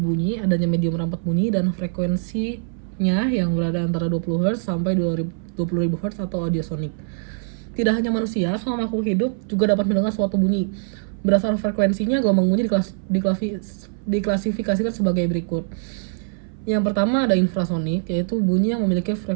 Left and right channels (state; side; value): silent; left; 57 dB below the other